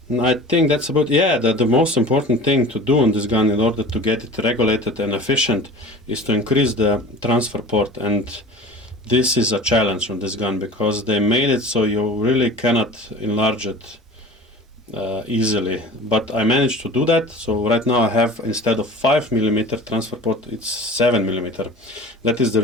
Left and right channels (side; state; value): both; normal; correlation 0.39